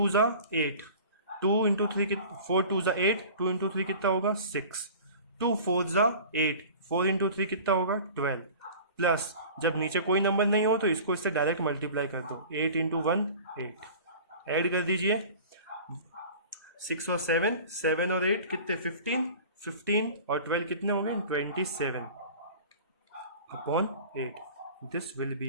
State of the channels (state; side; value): inverted; both; correlation -0.41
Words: ज़ा 8, 2 इंटू 3 4 2 ज़ा 8, 2 इंटू 3 कितना होगा 6, 2 4 ज़ा 8, 4 इंटू 3 कितना होगा 12, प्लस जब नीचे कोई नंबर नहीं हो तो इसको इससे डायरेक्ट मल्टीप्लाई कर दो, 8 इंटू 1 8, ऐड कर दीजिए, 6 और 7, 7 और 8 कितने 15, 15 और 12 कितने हो गए 27 upon 8, this will be